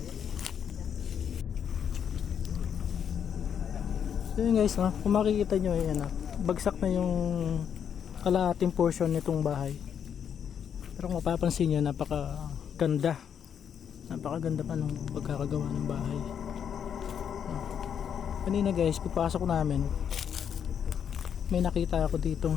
So yun guys, no? Kung makikita nyo, ayan, bagsak na yung kalahating portion nitong bahay. Pero kung mapapansin nyo, napakaganda pa nung pagkakagawa ng bahay. Kanina guys, pagpasok namin, may nakita ako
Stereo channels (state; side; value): quieter; right; 8.1 dB